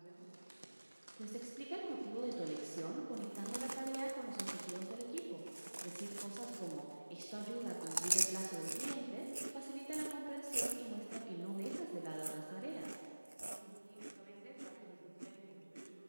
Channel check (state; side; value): inverted; both; correlation -1.00